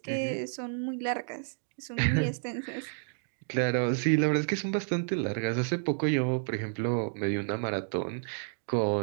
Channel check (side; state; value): left; silent; 57 dB below the other